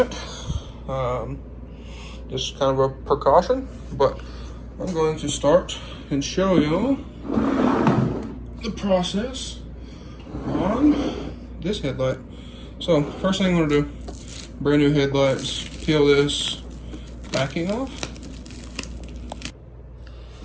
Just kind of a precaution, but I'm going to start and show you the process on this headlight. So first thing I'm going to do, brand new headlights, peel this backing off.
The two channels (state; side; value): identical; both; correlation 1.00